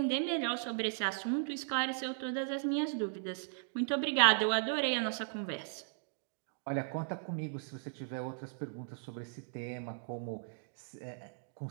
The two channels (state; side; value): silent; left; digital silence